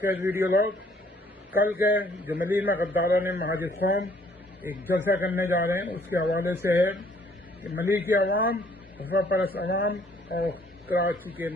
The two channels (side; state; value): both; normal; correlation 0.62